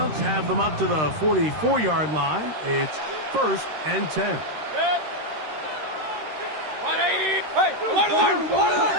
have them up to the 44-yard line. It's 1st and 10. 180. Hey, alert.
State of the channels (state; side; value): late; left; 13 ms